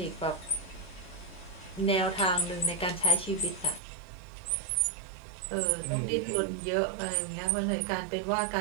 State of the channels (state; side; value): drops out; left; at 3.8 s